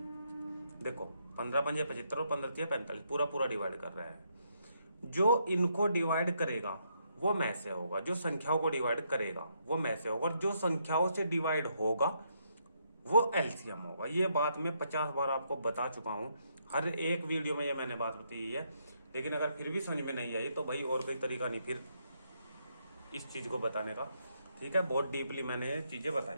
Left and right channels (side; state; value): both; inverted; correlation -0.76